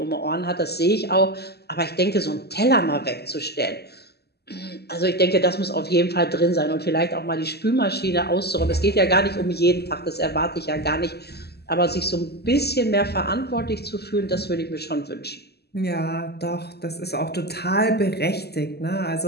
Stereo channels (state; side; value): late; right; 0.47 ms